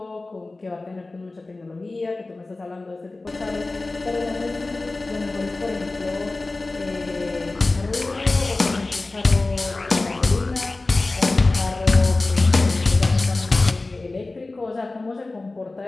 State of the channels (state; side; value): quieter; right; 3.2 dB